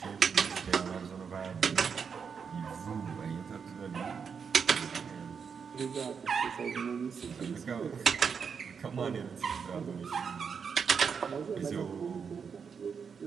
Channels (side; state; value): left; quieter; 6.3 dB